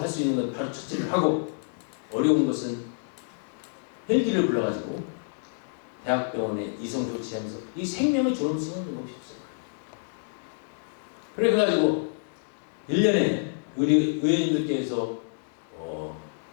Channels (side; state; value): right; silent; digital silence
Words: 수 있는 건 바로 처치를 하고 어려운 것은 헬기를 불러가지고 대학병원에 이송 조치하면서 이 생명의 존엄성을 높여주세요. 그래가지고 1년에 우리 의원님들께서